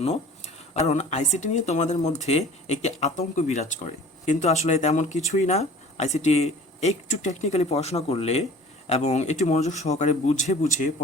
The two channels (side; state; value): both; normal; correlation 0.45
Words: কারণ আইসিটি নিয়ে তোমাদের মধ্যে একটি আতঙ্ক বিরাজ করে, কিন্তু আসলে তেমন কিছুই না। আইসিটি একটু টেকনিক্যালি পড়াশোনা করলে এবং একটু মনোযোগ সহকারে বুঝে বুঝে